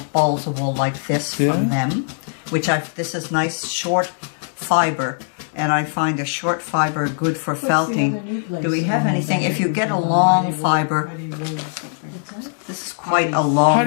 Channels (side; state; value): right; silent; 65 dB below the other